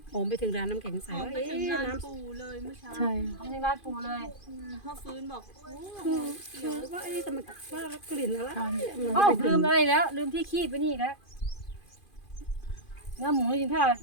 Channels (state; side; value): late; right; 2.5 ms